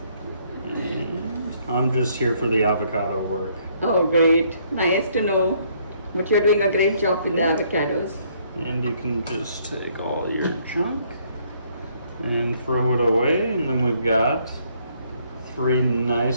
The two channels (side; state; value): both; inverted; correlation -0.67